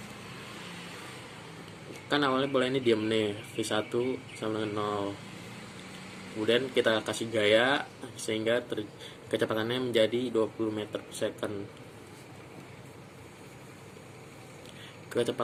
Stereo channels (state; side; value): identical; both; correlation 1.00